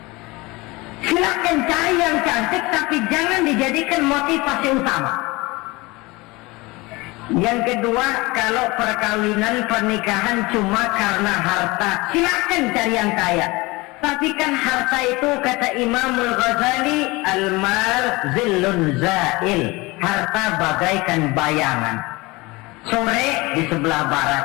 Silakan cari yang cantik, tapi jangan dijadikan motivasi utama. Yang kedua, kalau perkawinan pernikahan cuma karena harta, silakan cari yang kaya. Tapi kan harta itu kata Imamul Ghazali, al-mal zillun zail, harta bagaikan bayangan. Sore di sebelah barat,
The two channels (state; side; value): quieter; right; 23.2 dB